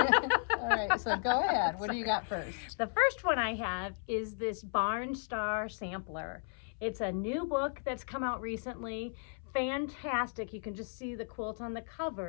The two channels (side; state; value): right; silent; 55 dB below the other